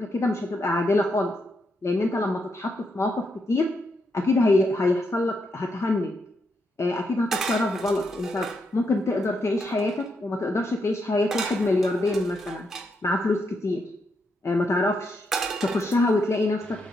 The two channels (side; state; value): both; normal; correlation 0.80